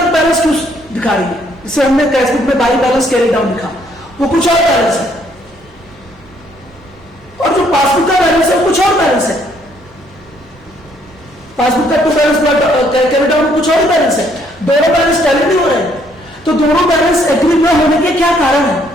बैलेंस क्यों दिखा रही है, जैसे हमने कैश बुक में बाई बैलेंस कैरी डाउन लिखा, वो कुछ और बैलेंस है, और जो पासबुक का बैलेंस है वो कुछ और बैलेंस है। पासबुक का टू बैलेंस कैरी डाउन कुछ और बैलेंस है, दोनों बैलेंस टैली नहीं हो रहे हैं। तो दोनों बैलेंस एग्री न होने के क्या कारण है,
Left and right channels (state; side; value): normal; both; correlation 0.67